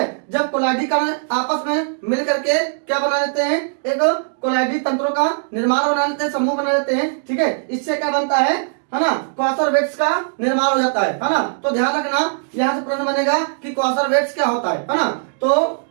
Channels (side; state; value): left; silent; digital silence